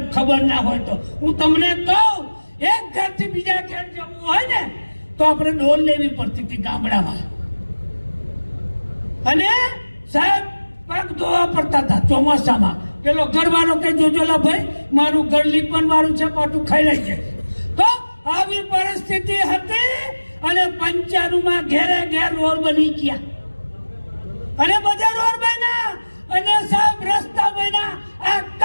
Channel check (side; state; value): both; inverted; correlation -1.00